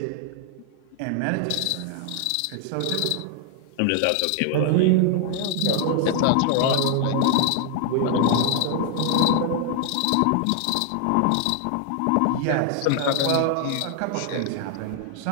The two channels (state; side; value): different; both; correlation 0.00